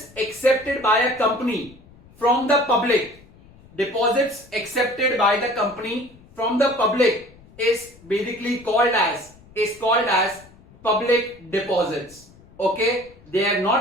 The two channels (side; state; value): left; noise; rumble, 25 dB below the sound